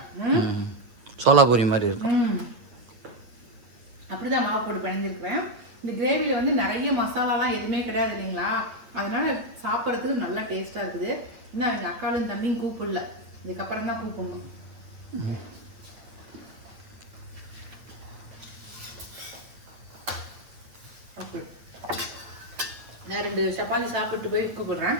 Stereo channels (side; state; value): left; late; 8.8 ms